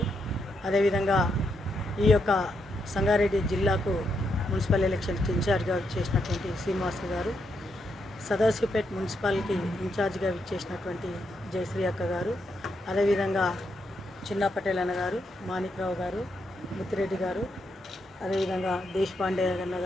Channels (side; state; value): both; normal; correlation 0.80